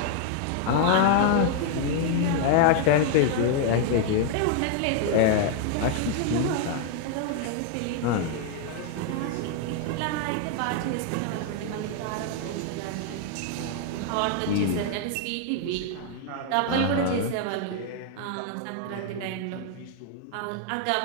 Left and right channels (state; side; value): different; both; correlation 0.00